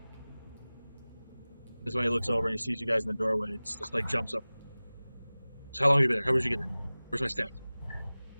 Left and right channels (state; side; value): inverted; both; correlation -0.99